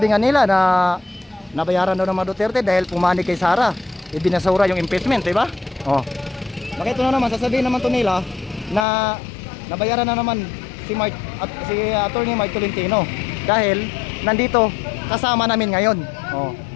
nga nila na nabayaran daw ng mga Duterte dahil pumanig kay Sara. Ibinasura yung impeachment, di ba? Oh. Bakit ito na naman, sasabihin naman to nila na nabayaran na naman si Atty. Mark Tolentino dahil nandito kasama namin ngayon. Oh.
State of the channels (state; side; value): drops out; right; at 8.8 s